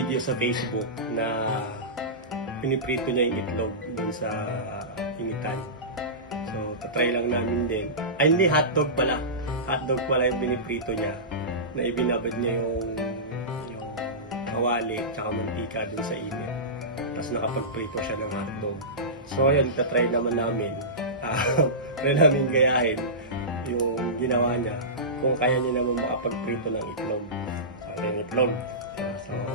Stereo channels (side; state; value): both; normal; correlation -0.20